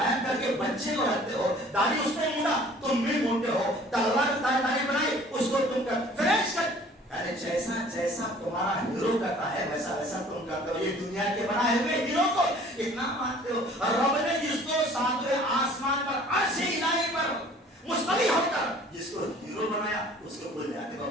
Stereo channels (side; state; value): both; normal; correlation 0.51